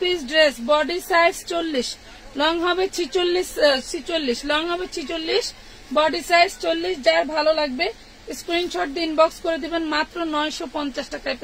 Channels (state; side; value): identical; both; correlation 1.00